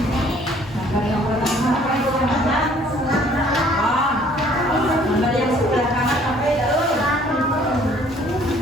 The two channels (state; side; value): normal; both; correlation 0.58